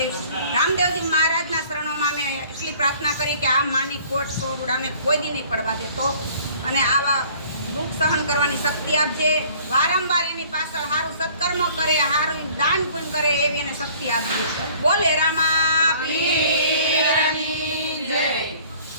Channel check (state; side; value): inverted; both; correlation -0.53